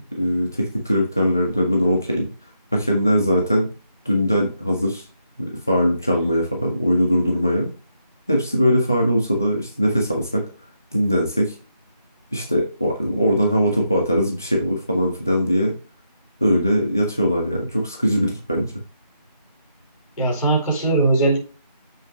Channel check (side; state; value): both; inverted; correlation -0.79